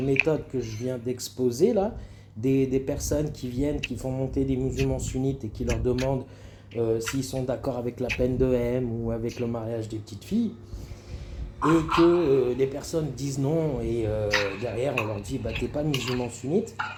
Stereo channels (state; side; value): identical; both; correlation 1.00